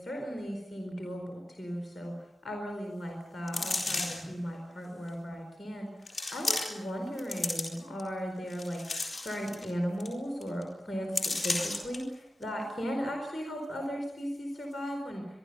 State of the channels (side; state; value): both; normal; correlation 0.93